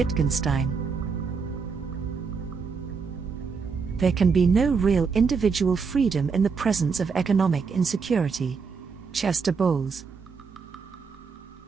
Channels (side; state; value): left; quieter; 5.3 dB